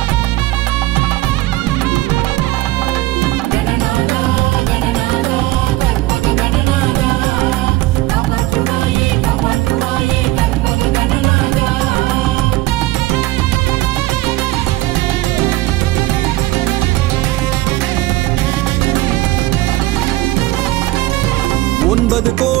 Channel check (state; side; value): quieter; left; 18.1 dB